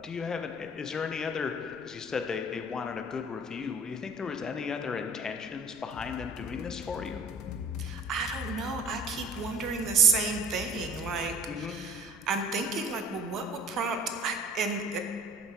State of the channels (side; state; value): right; noise; rumble, 27 dB below the sound